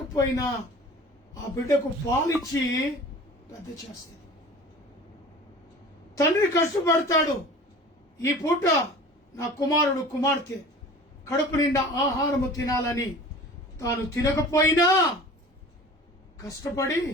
ఆ బిడ్డకు పాలిచ్చి పెద్ద చేస్తుంది. తండ్రి కష్టపడతాడు, ఈ పూట నా కుమారుడు కుమార్తె కడుపు నిండా ఆహారము తినాలని తాను తినకపోయినా కష్టపడి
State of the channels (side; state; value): both; normal; correlation 0.41